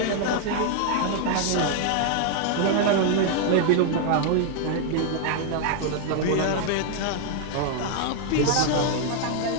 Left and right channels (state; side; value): different; both; correlation 0.00